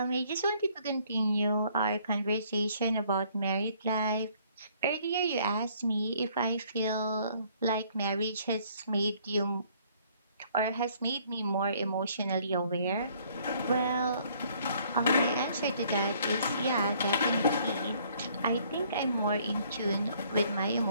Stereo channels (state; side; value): inverted; both; correlation -0.62